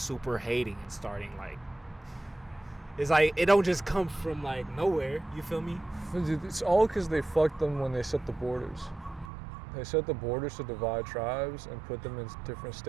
hating and starting like, it's like, it don't just come from like nowhere. You feel me? It's all because they fucked them when they set the borders. They set the borders to divide tribes and put them in different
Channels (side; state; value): left; drops out; at 9.3 s